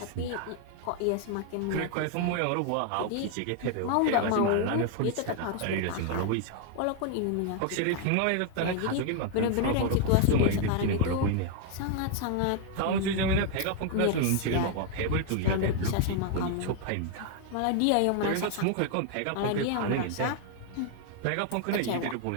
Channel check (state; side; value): different; both; correlation 0.00